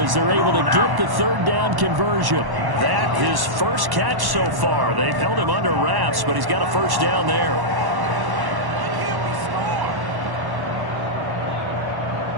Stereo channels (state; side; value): late; left; 1.1 ms